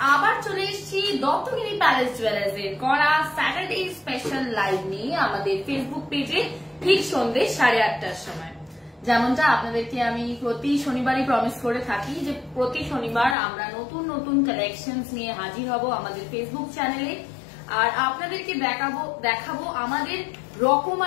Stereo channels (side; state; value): right; drops out; at 13.4 s